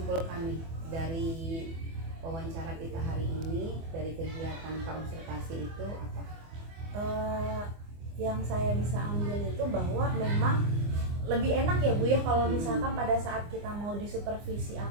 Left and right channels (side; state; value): left; late; 24 ms